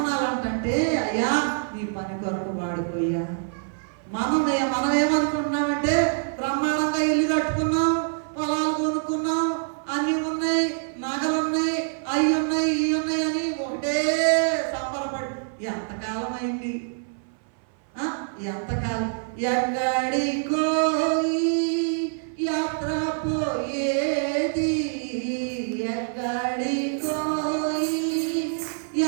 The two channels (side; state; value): left; silent; 57 dB below the other